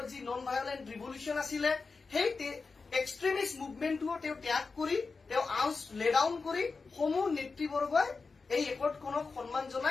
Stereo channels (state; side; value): quieter; right; 4.4 dB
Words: যি নন ভায়োলেন্ট ৰিভলিউচন আছিলে সেই এক্সট্ৰিমিষ্ট মুভমেন্টটো তেওঁ ত্যাগ কৰি তেওঁ আউজ লে ডাউন কৰি সমূহ নেতৃবৰ্গই এই একৰ্ডখনক সন্মান